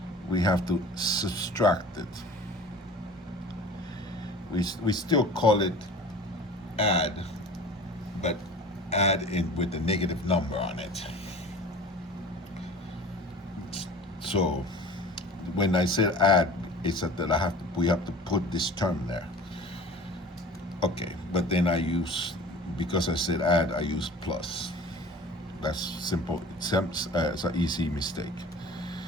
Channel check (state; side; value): normal; both; correlation 0.41